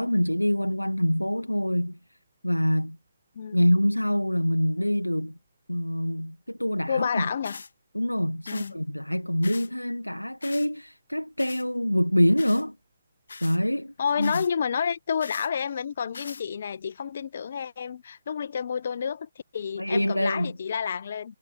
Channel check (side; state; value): both; inverted; correlation -0.96